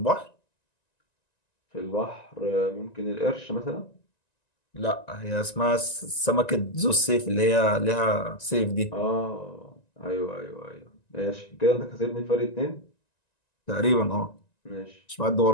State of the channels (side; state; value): right; late; 1.9 ms